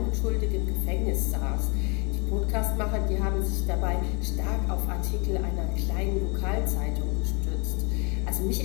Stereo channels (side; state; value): right; quieter; 31.7 dB